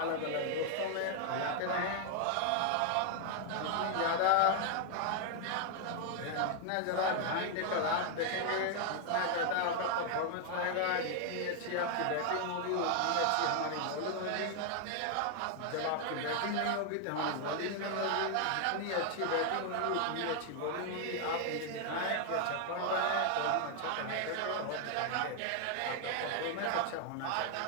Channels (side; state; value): both; different; correlation 0.00